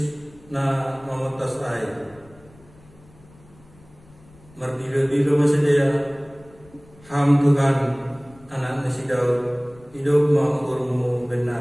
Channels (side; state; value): left; noise; rumble, 26 dB below the sound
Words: na mamotas air mardilo masedaya ham Tuhan anak nasi Daud hidup maukurmu